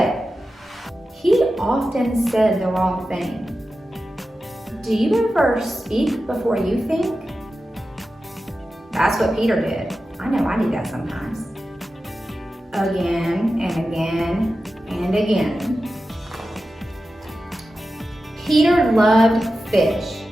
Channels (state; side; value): normal; both; correlation 0.93